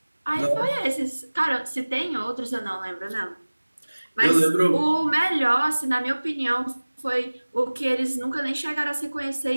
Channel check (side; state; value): both; inverted; correlation -1.00